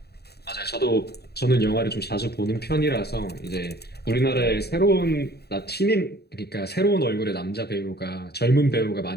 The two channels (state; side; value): late; right; 0.47 ms